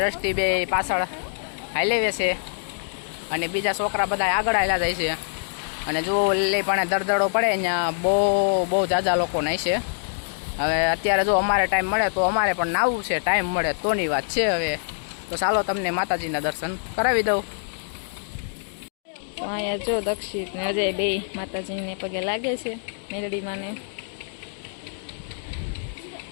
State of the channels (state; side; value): silent; right; digital silence